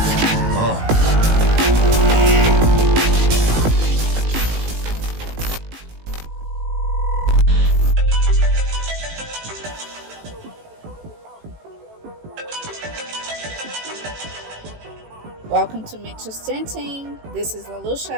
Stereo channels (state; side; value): late; left; 18 ms